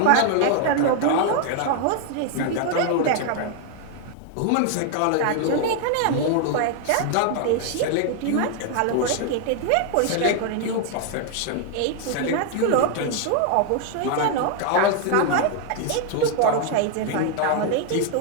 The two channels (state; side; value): different; both; correlation 0.00